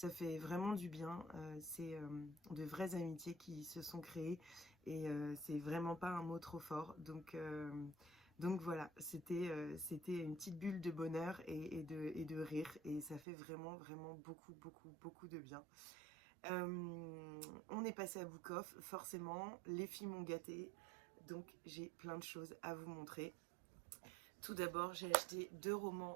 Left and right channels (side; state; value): left; drops out; at 13.2 s